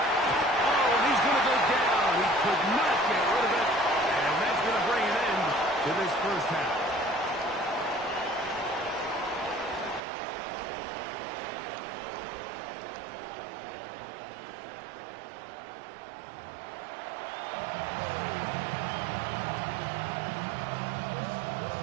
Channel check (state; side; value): drops out; left; at 10.0 s